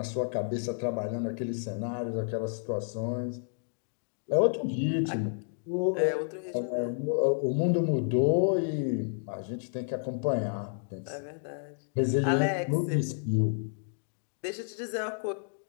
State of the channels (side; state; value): right; silent; digital silence